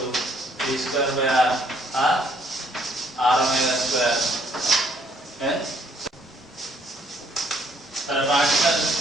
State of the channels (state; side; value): normal; both; correlation 0.66